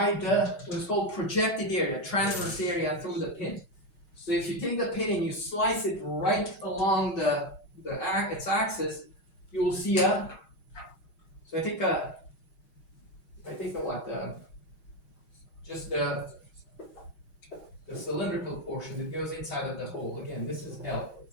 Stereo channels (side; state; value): right; late; 6.3 ms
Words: what is called projected area, transverse area through the pin. So if you take the pin and you slice it right along its axis, you will see so I take just the cylindrical portion that goes inside of the hole. Again, this is L.